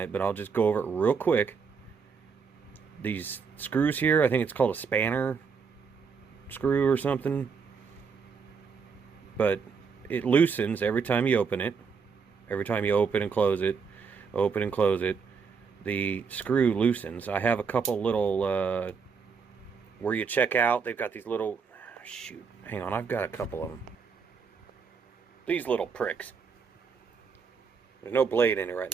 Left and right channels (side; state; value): left; quieter; 5.7 dB